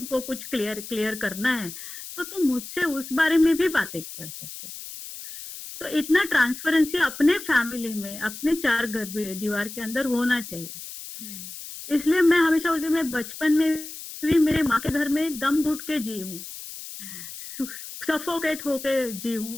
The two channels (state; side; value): noise; left; hiss, 12 dB below the sound